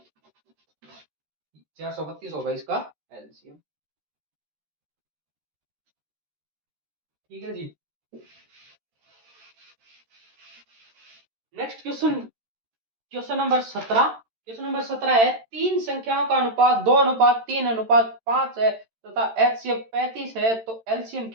432 होगा इसका एलसीएम। ठीक है जी। Next question, question number 17। Question number 17 है, तीन संख्याओं का अनुपात 2:3:5 है तथा एचसीएफ 35 है, तो एलसीएम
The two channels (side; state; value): left; late; 13 ms